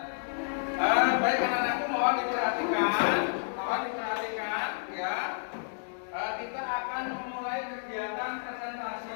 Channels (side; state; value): right; silent; 57 dB below the other